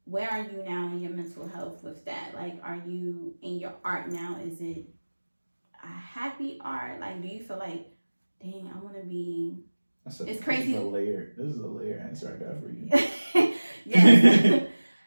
Where are you now in your mental health with that? Like, are you in your art now? Is it a happy art? Like, do you feel like, dang, I want to be... It's crazy. This is a layer answer I got for you. Yes.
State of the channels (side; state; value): both; inverted; correlation -1.00